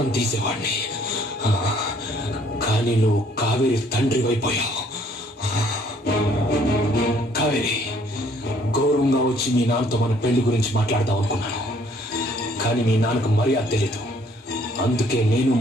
తీసేవాడిని. కానీ నువ్వు కావేరి తండ్రి అయిపోయావు. కావేరి, గౌరవంగా వచ్చి మీ నాన్నతో మన పెళ్లి గురించి మాట్లాడదాం అనుకున్నాను, కానీ మీ నాన్నకు మర్యాద తెలీదు, అందుకే నేను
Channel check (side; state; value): both; normal; correlation 0.62